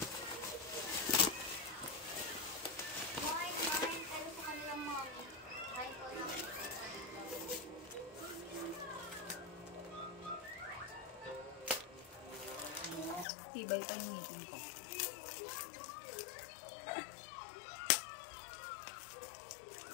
Tibay pa yung meeting ko.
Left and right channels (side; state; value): right; drops out; at 13.2 s